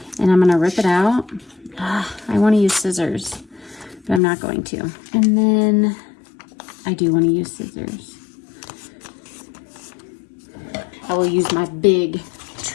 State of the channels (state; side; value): drops out; right; at 4.2 s